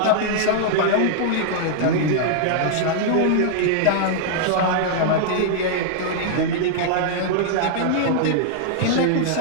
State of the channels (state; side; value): different; both; correlation -0.01